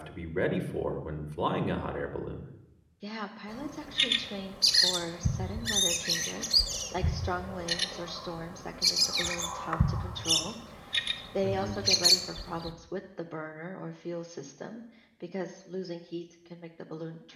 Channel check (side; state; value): both; identical; correlation 1.00